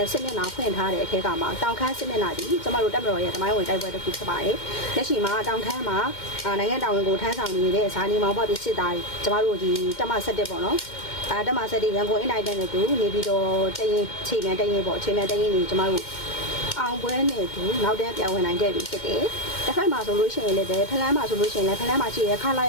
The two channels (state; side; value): late; right; 2.1 ms